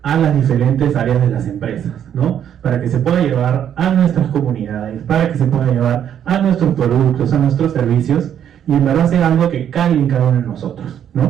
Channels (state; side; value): quieter; left; 9.5 dB